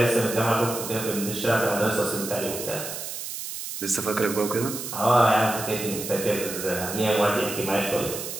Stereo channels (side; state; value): right; noise; hiss, 7 dB below the sound